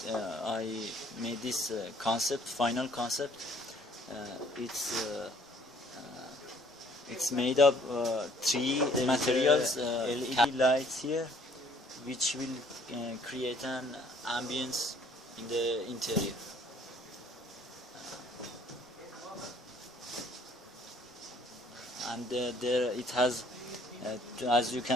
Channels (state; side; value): normal; both; correlation 0.59